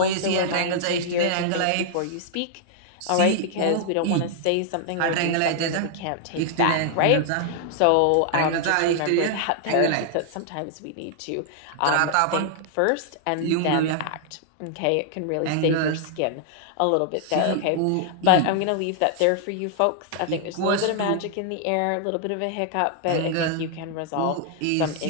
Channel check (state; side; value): different; both; correlation -0.01